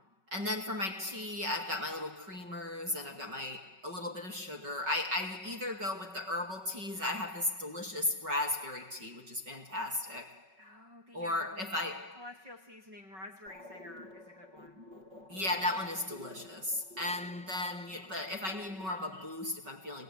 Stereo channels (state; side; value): late; left; 5.3 ms